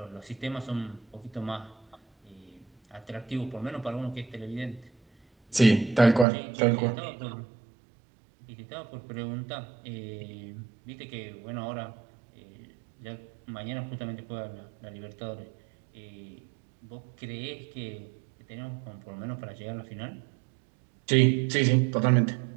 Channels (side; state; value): left; drops out; at 6.2 s